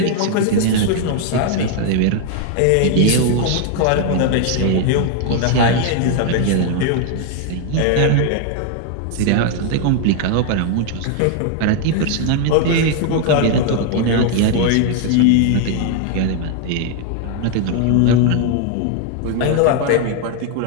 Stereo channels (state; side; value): different; both; correlation 0.00